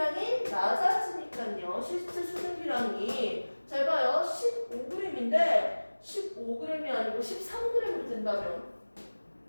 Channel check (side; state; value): both; inverted; correlation -1.00